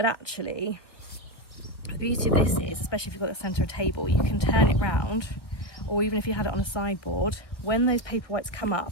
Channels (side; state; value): right; late; 1.0 ms